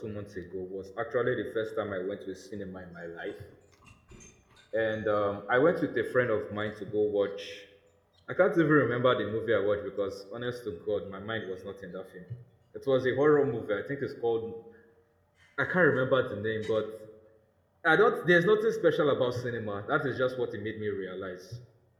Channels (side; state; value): both; identical; correlation 1.00